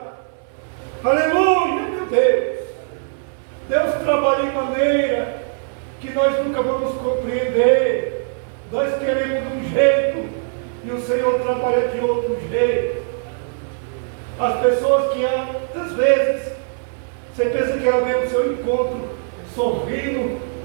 Aleluia, meu Deus! Deus trabalha em maneira que nós nunca vamos compreender. Nós queremos de um jeito e o Senhor trabalha de outro jeito. As pessoas que às vezes você pensa que ela vem ao seu encontro sorrindo,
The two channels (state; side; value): silent; left; 65 dB below the other